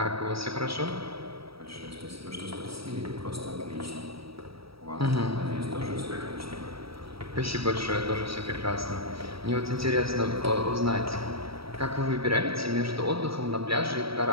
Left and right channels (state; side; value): late; left; 0.76 ms